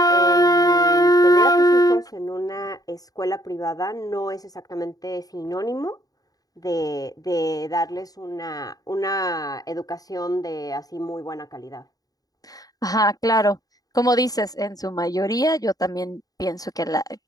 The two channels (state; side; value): late; right; 0.18 ms